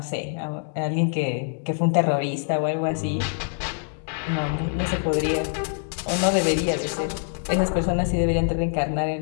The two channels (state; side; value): silent; right; digital silence